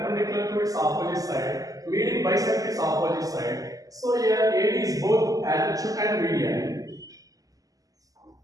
to its opposite side. Median bisect its opposite side. So here AD is both altitude and median.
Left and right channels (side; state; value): left; late; 0.17 ms